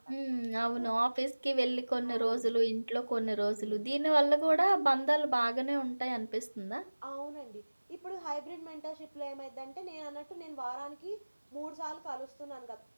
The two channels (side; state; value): both; inverted; correlation -1.00